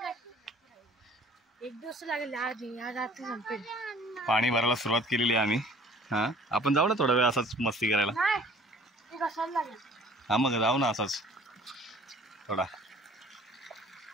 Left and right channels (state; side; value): normal; both; correlation 0.52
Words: एक दिवस लागेल रात्री संपेल. पाणी भरायला सुरुवात केलेली आहे आम्ही. हा आपण जाऊ ना थोडा वेळ असाच मस्ती करायला. हा मग जाऊ ना असाच थोडा.